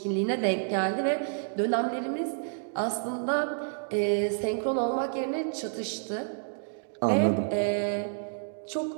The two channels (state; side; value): silent; left; digital silence